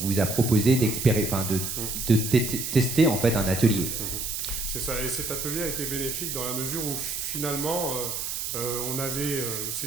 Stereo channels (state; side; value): noise; right; hiss, 4 dB below the sound